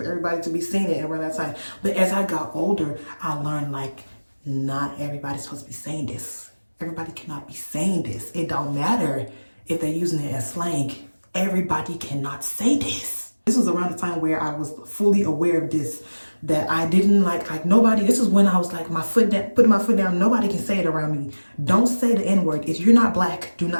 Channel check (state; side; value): inverted; both; correlation -1.00